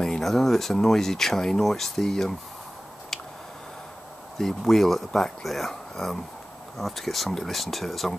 I don't know if it's a noisy chain or it's the wheel at the back there. I'll have to get somebody to listen to it as I'm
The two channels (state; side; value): normal; both; correlation 0.96